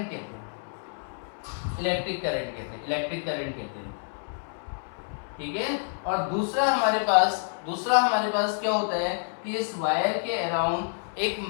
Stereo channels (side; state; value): right; silent; 59 dB below the other